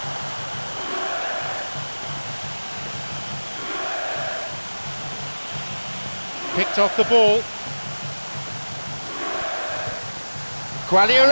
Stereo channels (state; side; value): inverted; both; correlation -1.00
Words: Picked off the ball.